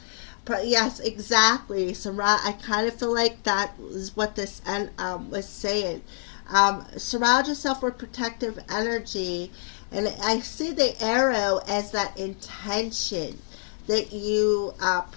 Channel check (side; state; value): right; silent; digital silence